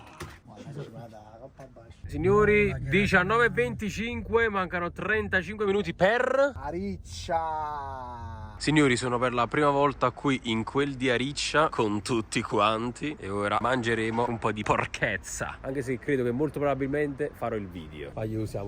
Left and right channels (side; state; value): both; identical; correlation 1.00